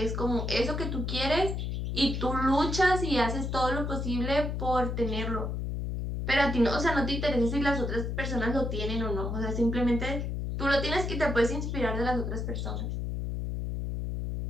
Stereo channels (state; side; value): noise; left; hum, 2 dB below the sound